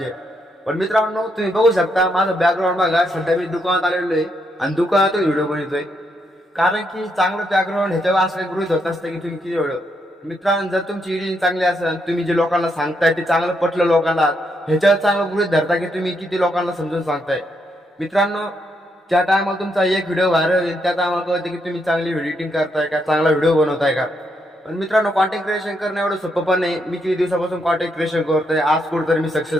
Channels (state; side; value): normal; both; correlation 0.78